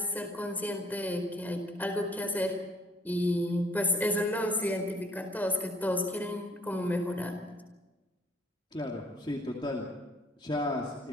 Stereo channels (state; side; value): normal; both; correlation 0.61